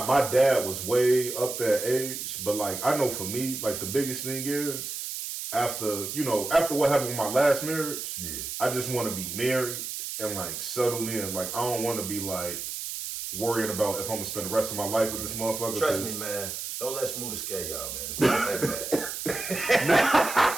dad was way up that age, but like I know for me, like the biggest thing is after what happened with my last marriage, I just want to be married and like settled in. Like I don't want to be like worrying about if I'm gonna spend the rest of my life with this motherfucker. Trust me, man. Don't let Smooth scare y'all, man. It's not that bad.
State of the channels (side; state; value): right; noise; hiss, 6 dB below the sound